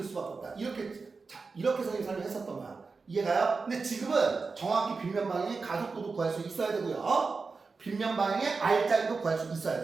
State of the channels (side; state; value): left; quieter; 4.4 dB